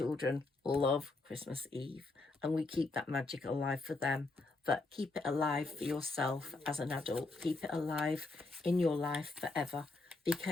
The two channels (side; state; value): right; quieter; 3.4 dB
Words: love Christmas Eve, and we keep that magic alive for them. But keep it alive for yourself as an adult. Keep it alive in your life forever,